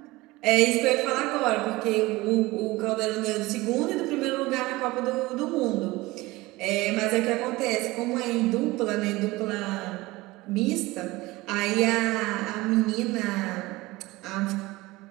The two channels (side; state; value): left; quieter; 20.4 dB